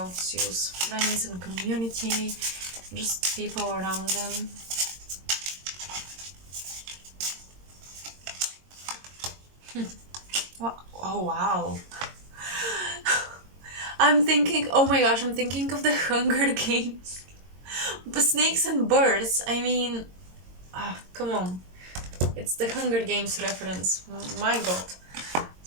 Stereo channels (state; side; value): late; left; 22 ms